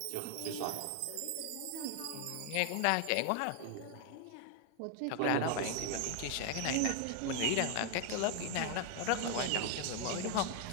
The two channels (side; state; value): both; different; correlation 0.00